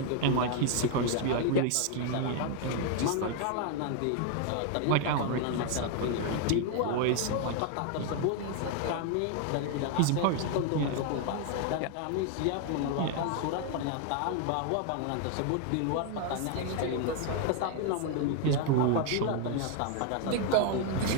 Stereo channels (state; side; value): different; both; correlation 0.00